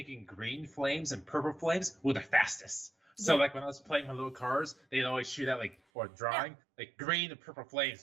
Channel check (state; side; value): drops out; left; at 5.8 s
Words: green flames and purple flames were the fastest. So Yeah. like when I was playing my little cars, they'd always shoot out or drawing like green and purple